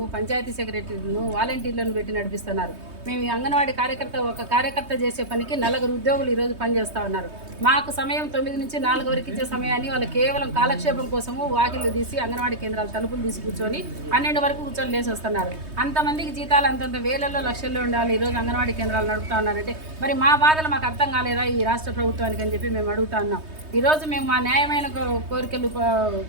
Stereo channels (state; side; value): late; left; 3.2 ms